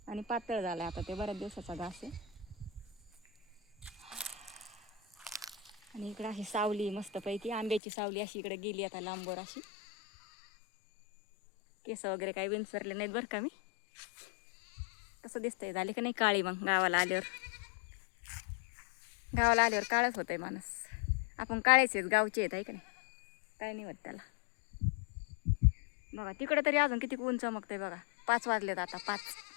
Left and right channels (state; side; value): drops out; right; at 7.8 s